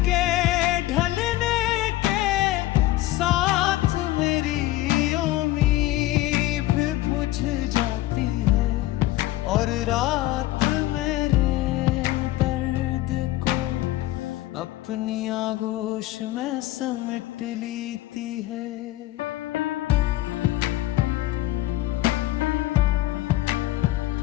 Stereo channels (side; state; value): right; quieter; 16.3 dB